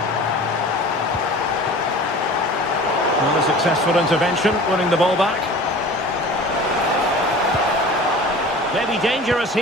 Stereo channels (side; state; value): both; normal; correlation 0.41